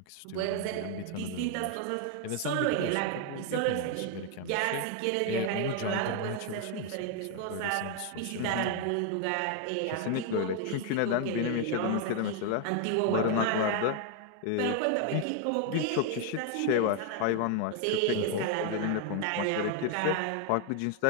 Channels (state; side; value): different; both; correlation 0.00